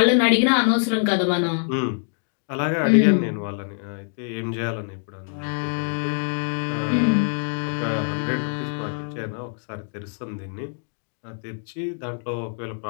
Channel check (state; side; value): silent; right; digital silence